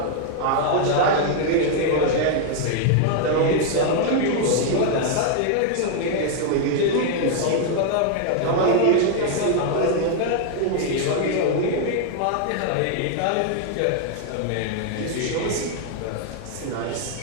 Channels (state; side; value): different; both; correlation 0.00